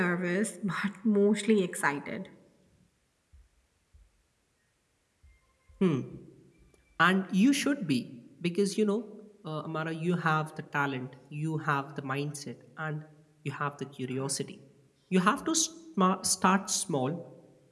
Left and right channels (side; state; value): both; identical; correlation 1.00